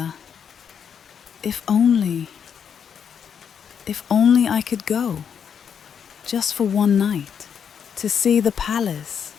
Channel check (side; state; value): right; quieter; 7.5 dB